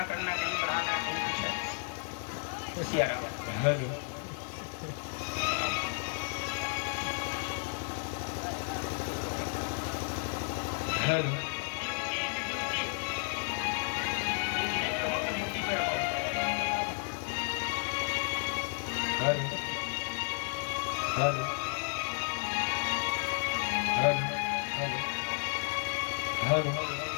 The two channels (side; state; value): right; silent; 55 dB below the other